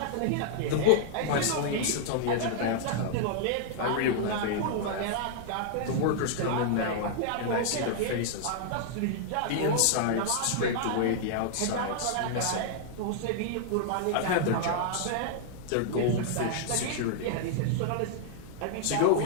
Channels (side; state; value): both; different; correlation -0.01